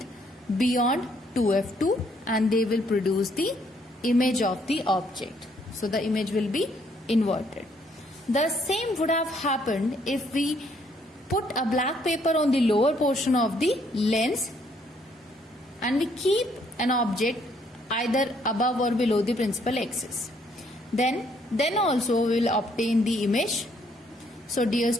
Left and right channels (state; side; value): normal; both; correlation 0.68